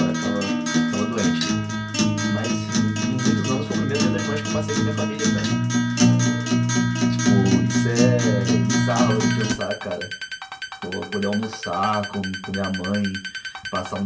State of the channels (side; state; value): both; identical; correlation 1.00